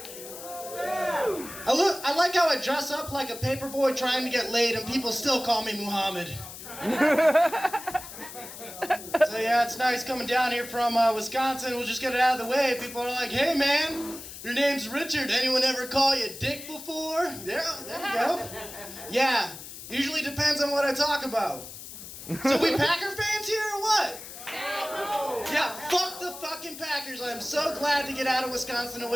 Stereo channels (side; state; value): left; noise; hiss, 13 dB below the sound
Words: I like how I dress up like a paperboy trying to get laid and people still call me Muhammad. So yeah, it's nice coming down here from Wisconsin. We'll just get it out of the way. People are like, hey man, your name's Richard. Anyone ever call you Dick before? Yeah, there you go. Yeah, usually depends on what I talk about. So we Packer fans here or what? Yeah, fuck the fucking Packers. I'm so glad to get out of Wisconsin